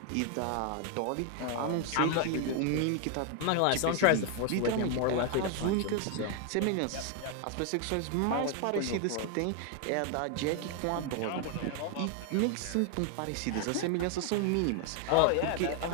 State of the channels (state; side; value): different; both; correlation 0.00